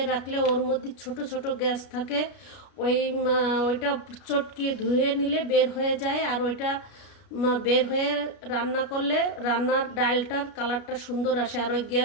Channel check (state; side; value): late; right; 33 ms